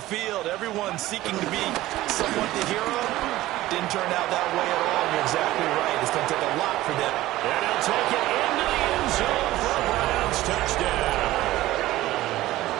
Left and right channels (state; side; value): quieter; left; 16.3 dB